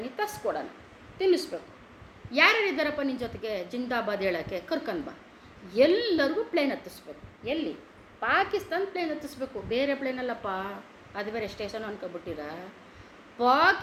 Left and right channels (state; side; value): identical; both; correlation 1.00